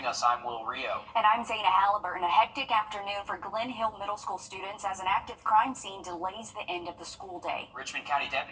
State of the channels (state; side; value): identical; both; correlation 1.00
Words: us. I'm Wrdw. And I'm Zaina Halliburton. A hectic afternoon for Glen Hill Middle School students as an active crime scene delays the end of the school day. Richmond County